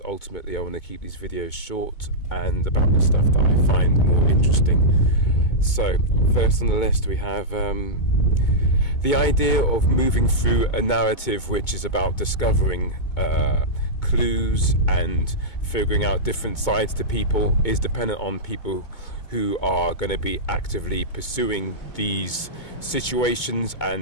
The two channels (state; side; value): late; right; 2.2 ms